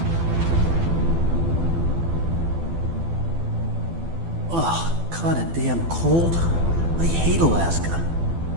Oh, kinda damn cold. I hate Alaska.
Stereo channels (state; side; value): late; left; 12 ms